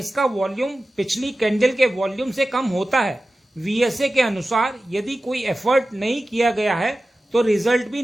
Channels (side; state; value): both; normal; correlation 0.95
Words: वॉल्यूम पिछली कैंडल के वॉल्यूम से कम होता है। वीएसए के अनुसार यदि कोई एफर्ट नहीं किया गया है तो रिजल्ट भी